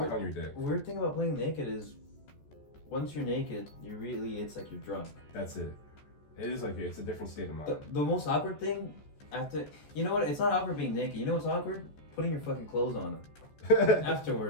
on your dick. Weird thing about playing naked is, once you're naked, it's like you're drunk. That's it. It is like it's a different state of mind. The most awkward thing you know what? It's not awkward being naked. You know what's awkward? Putting your fucking clothes on.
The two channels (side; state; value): right; late; 14 ms